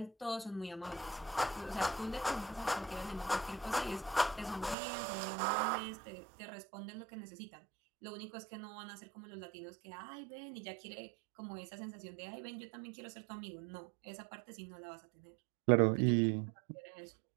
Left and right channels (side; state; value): left; drops out; at 4.8 s